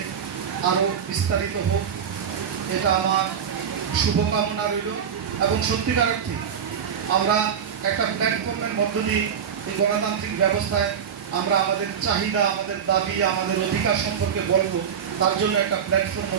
আরও বিস্তারিত হোক, এটা আমার শুভকামনা রইল। এবং সত্যিকার অর্থে আমরা একটা প্ল্যাটফর্মের মধ্য দিয়ে এই গণতান্ত্রিক ব্যবস্থায় আমরা আমাদের চাহিদা, আমাদের দাবি, আমাদের অধিকার সম্পর্কে বলবো, তার জন্য একটা প্ল্যাটফর্মও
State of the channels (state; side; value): quieter; left; 7.7 dB